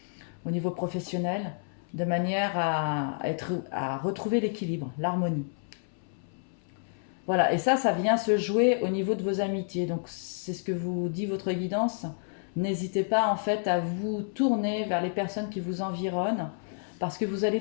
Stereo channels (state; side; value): silent; right; 58 dB below the other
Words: au niveau professionnel, de manière à retrouver l'équilibre, l'harmonie. Voilà, et ça vient se jouer au niveau de vos amitiés. Donc c'est ce que vous dit votre guidance. N'hésitez pas en fait à vous tourner vers les personnes qui vous environnent parce que vous allez